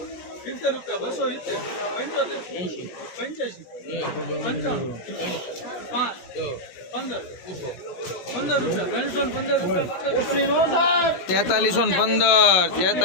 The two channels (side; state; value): right; late; 16 ms